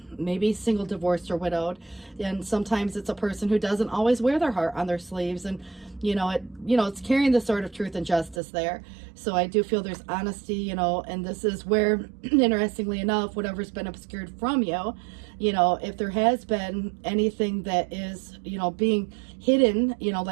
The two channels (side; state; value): left; drops out; at 8.4 s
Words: maybe single, divorced, or widowed. And sometimes it's a person who doesn't always wear their heart on their sleeves. And, it's carrying the sword of truth and justice there. So I do feel there's honesty, and this is where, interestingly enough, whatever's been obscured from you, if there has been anything that is, being hidden,